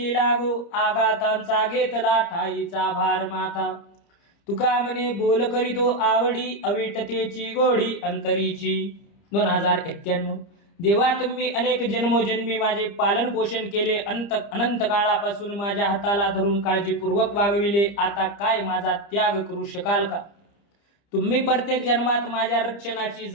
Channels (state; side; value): late; right; 30 ms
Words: लागो, आघातांचा घेतला ठाईचा भार माता. तुका म्हणे बोल करीतो आवडी, अविटतेची गोडी अंतरीची. 2091. देवा तुम्ही अनेक जन्मोजन्मी माझे पालन पोषण केले. अनंत काळापासून माझ्या हाताला धरून काळजीपूर्वक वागविले. आता काय माझा त्याग करू शकाल का. तुम्ही प्रत्येक जन्मात माझ्या रक्षणाची